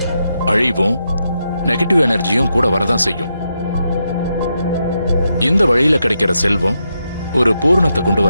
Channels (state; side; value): inverted; both; correlation -0.84